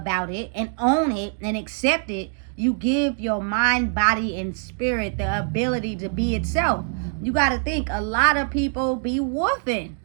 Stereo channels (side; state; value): left; silent; 57 dB below the other